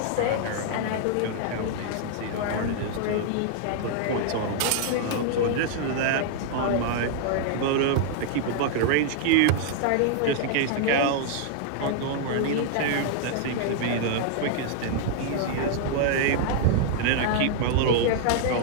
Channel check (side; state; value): both; different; correlation 0.00